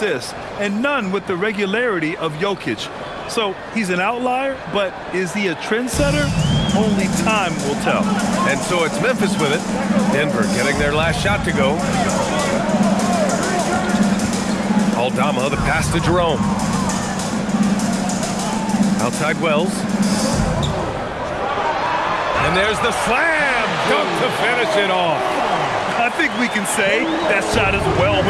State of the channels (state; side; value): identical; both; correlation 1.00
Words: and none with the regularity of Jokic. So he's an outlier, but is he a trendsetter? Only time will tell. And so it's Memphis with it. Denver getting their last shot to go. Aldama, the pass to Jerome. Outside Wells. And there's the slam dunk to finish it off. I think we can say that shot is well